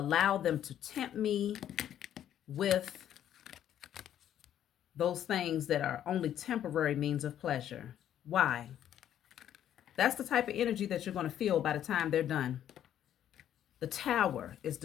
them to tempt me with those things that are only temporary means of pleasure? Why? That's the type of energy that you're going to feel by the time they're done. The Tower is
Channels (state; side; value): quieter; right; 10.7 dB